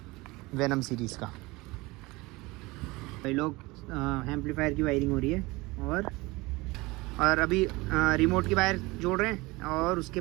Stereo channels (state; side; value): quieter; left; 22.4 dB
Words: वेनम सीरीज़ का। भाई लोग एम्पलीफायर की वायरिंग हो रही है और अभी रिमोट की वायर जोड़ रहे हैं और उसके